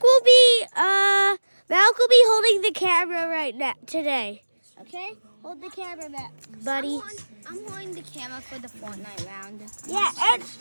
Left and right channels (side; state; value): both; inverted; correlation -1.00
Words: holding the camera right now today. Okay? Hold the camera back, buddy. I'm holding the camera for the Fortnite round. Yeah, and